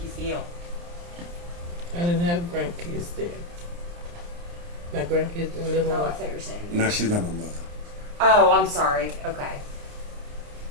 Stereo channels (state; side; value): late; left; 29 ms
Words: you feel? I didn't have grandkids there. My grandkids didn't live Oh, I on. thought you were saying. No, she's not my mother. Oh, I'm sorry. Okay.